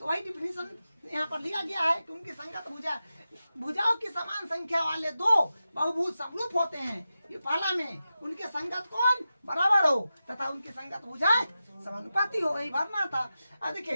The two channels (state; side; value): inverted; both; correlation -0.92